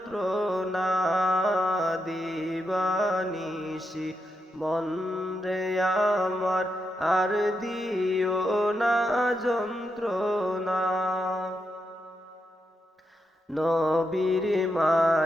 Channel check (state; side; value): normal; both; correlation 0.84